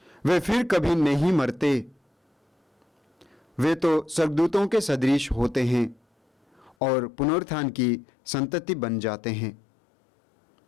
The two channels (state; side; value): drops out; right; at 6.8 s